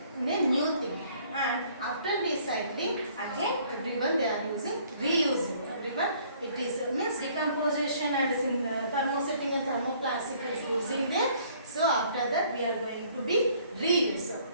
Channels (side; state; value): both; inverted; correlation -0.60